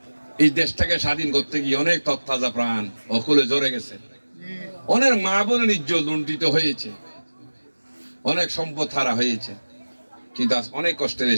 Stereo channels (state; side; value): inverted; both; correlation -1.00